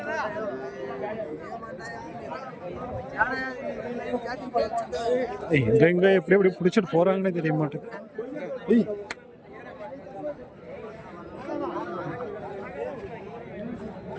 எங்க எப்படி எப்படி பிடிச்சிட்டு போறாங்கன்னு தெரிய மாட்டேங்குது.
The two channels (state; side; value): identical; both; correlation 1.00